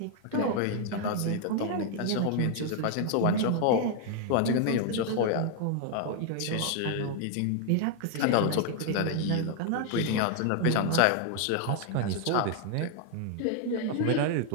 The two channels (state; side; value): different; both; correlation 0.00